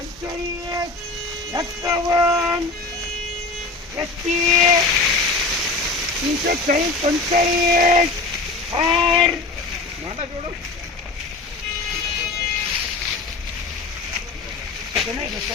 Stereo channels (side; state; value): right; quieter; 3.6 dB